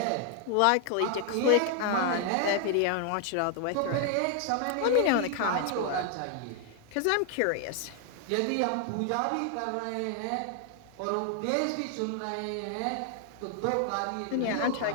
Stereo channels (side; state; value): both; different; correlation 0.00